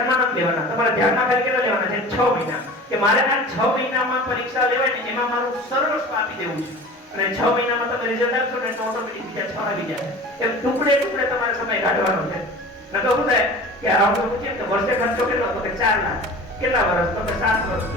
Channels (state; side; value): normal; both; correlation 0.38